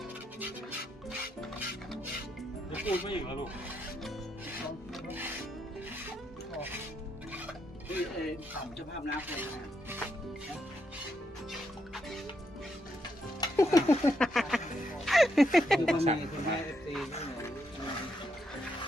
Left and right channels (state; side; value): normal; both; correlation 0.79